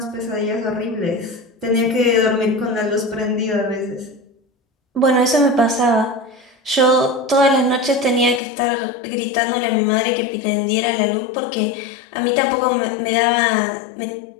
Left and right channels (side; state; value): right; drops out; at 8.4 s